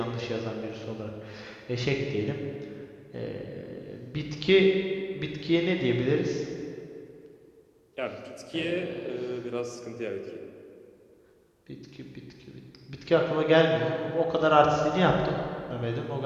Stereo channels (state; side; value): identical; both; correlation 1.00